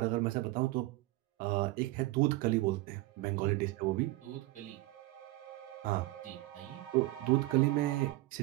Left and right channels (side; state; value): left; quieter; 19.3 dB